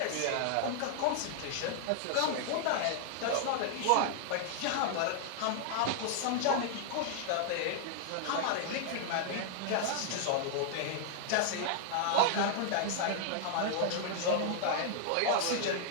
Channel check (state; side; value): different; both; correlation -0.01